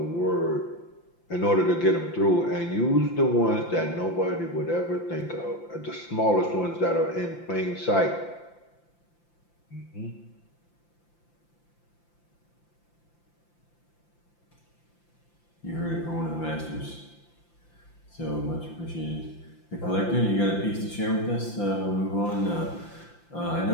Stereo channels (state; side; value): late; right; 5.8 ms